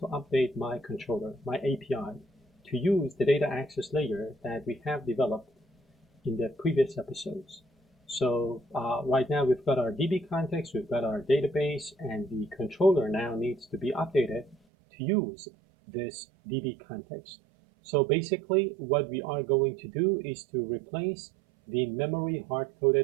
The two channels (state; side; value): drops out; left; at 14.6 s